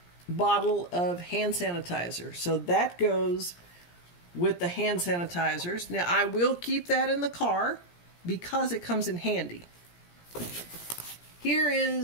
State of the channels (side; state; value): right; late; 17 ms